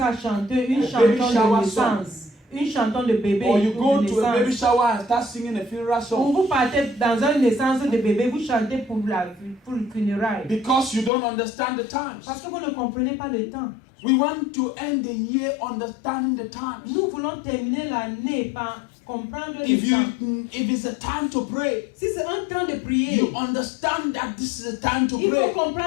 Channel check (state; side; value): drops out; right; at 11.1 s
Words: à chanter une A chanson baby shower de naissance, une chanson de bébé Or you go de to a baby naissance. shower and start singing a funeral Ou song. vous partez dans une naissance de bébé, vous chantez pour le funérail. Because you don't understand the times. Parce que vous ne comprenez pas le temps. We want to end the year understanding the times. Nous voulons terminer l'année par comprendre le If temps. it's a time to pray, Si c'est un temps de prier, you understand that this is a time to il faut pray.